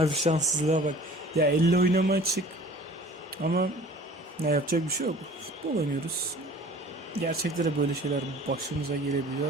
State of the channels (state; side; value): normal; both; correlation 0.47